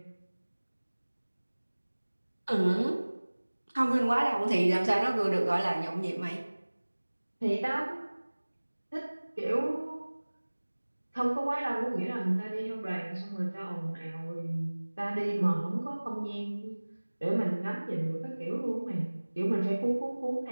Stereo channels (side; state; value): both; inverted; correlation -1.00